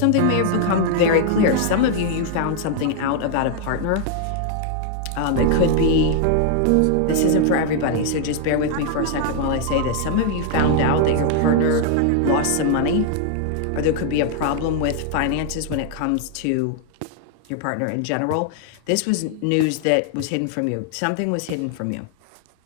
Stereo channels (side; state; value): both; different; correlation 0.00